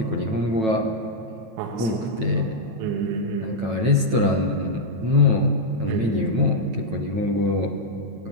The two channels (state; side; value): late; left; 9.1 ms